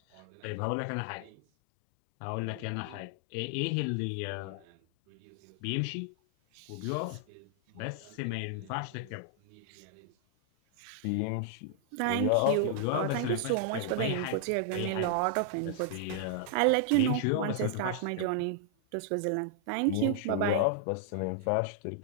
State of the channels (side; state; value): both; different; correlation -0.01